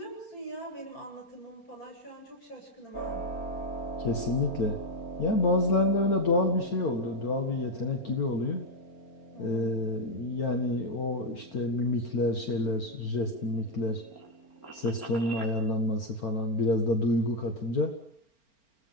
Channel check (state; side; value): late; right; 4.4 ms